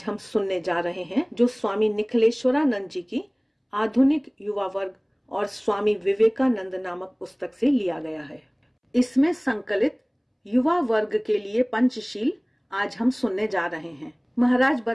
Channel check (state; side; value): identical; both; correlation 1.00